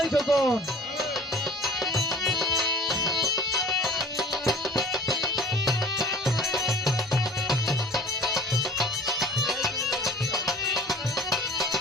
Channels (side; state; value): both; normal; correlation 0.46